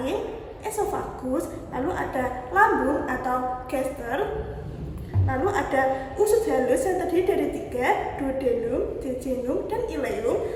esofagus, lalu ada lambung atau gaster, lalu ada usus halus yang terdiri dari 3, duodenum, jejunum, dan ileum,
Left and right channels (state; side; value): identical; both; correlation 1.00